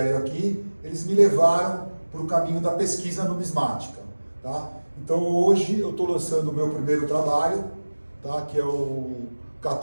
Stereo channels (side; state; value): both; inverted; correlation -1.00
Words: aqui, eles me levaram para o caminho da pesquisa numismática, tá? Então hoje eu estou lançando o meu primeiro trabalho, tá? Que é o